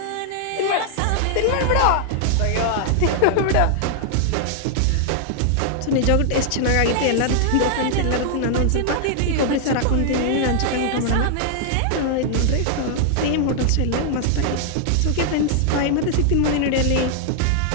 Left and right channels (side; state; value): both; different; correlation -0.01